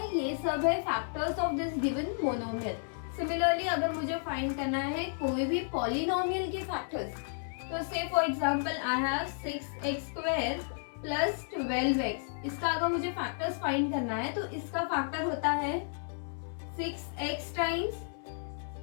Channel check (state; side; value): silent; right; 56 dB below the other